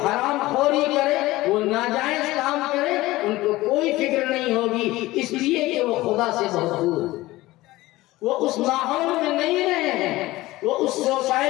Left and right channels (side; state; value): right; quieter; 18.3 dB